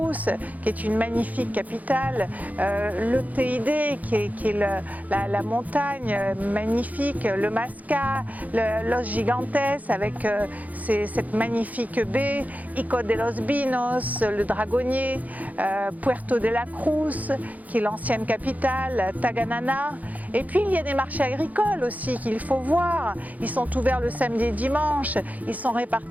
qui est une magnifique capitale, le TID, qui est la montagne magnifique, le Masca, Los Gigantes, avec cette magnifique baie, Ico de los Vinos, le Dragonnier, Puerto de la Cruz, qui est l'ancienne capitale, Taganana. Et puis il y a des marchés agricoles aussi qu'il faut voir. Ils sont ouverts le samedi et dimanche, ils sont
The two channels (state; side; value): late; left; 0.078 ms